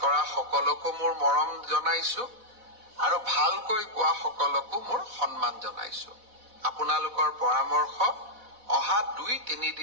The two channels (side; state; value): left; late; 4.1 ms